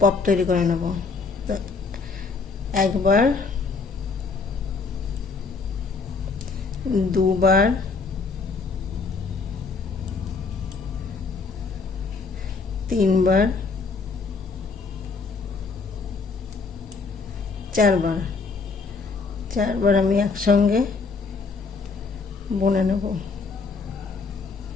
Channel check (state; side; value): quieter; right; 4.5 dB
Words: পপ তৈরি করে নেব। একবার, দুবার, তিনবার, চারবার। 4 বার আমি একসঙ্গে বুনে নেব।